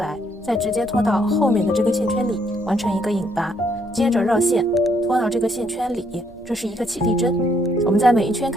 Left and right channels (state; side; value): noise; right; hum, 27 dB below the sound